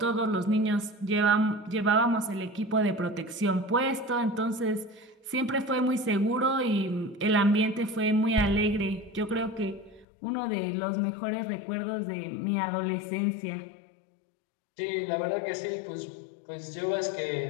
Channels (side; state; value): right; drops out; at 10.1 s